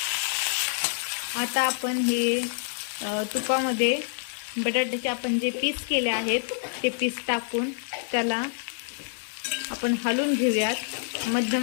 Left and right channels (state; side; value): silent; right; 60 dB below the other